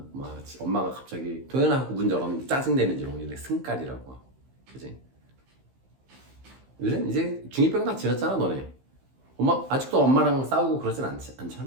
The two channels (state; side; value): late; left; 15 ms